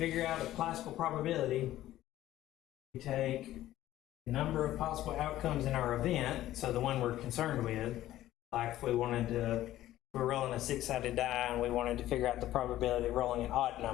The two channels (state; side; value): quieter; right; 14.1 dB